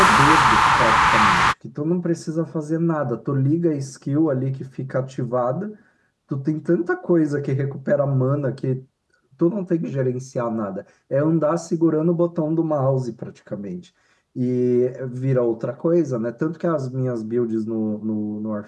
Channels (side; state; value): both; identical; correlation 1.00